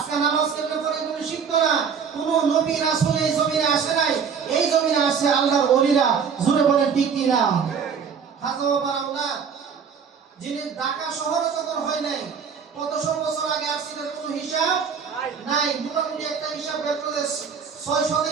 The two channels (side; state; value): left; quieter; 6.6 dB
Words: নামাজ কেমনে পড়ে এগুলো শিখতো না। কোন নবী রাসূল এই জমিনে আসে নাই, এই জমিনে আসে আল্লাহর ওলিরা। জোরে বলেন ঠিক কি না? খাজা বাবার আওলাদ যিনি ঢাকা শহরে যখন হয় নাই, কতশো বছর আগে আসছিলেন কোনো হিসাব নাই। মোটামুটি একটা হিসাব বের করে 600